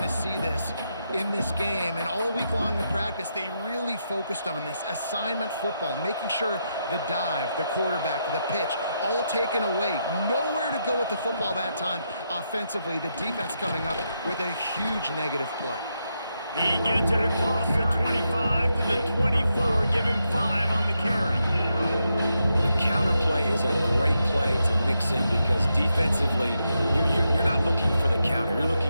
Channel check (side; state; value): both; inverted; correlation -0.83